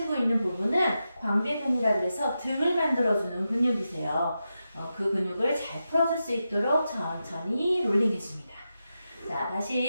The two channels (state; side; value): inverted; both; correlation -0.89